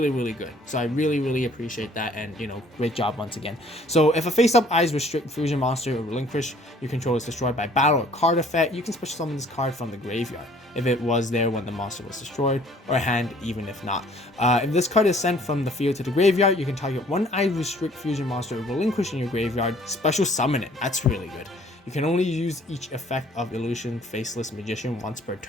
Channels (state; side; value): normal; both; correlation 0.57